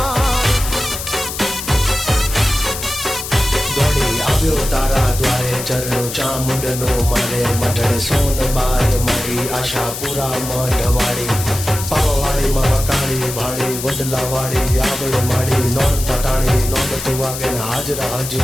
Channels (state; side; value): noise; left; hiss, 7 dB below the sound